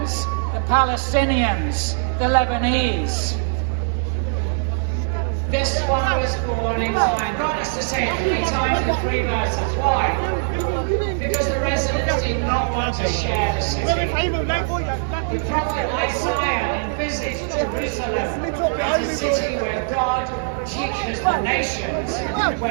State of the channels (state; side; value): silent; left; digital silence